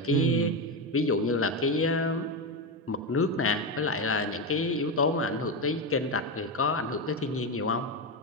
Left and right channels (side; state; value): both; normal; correlation 0.13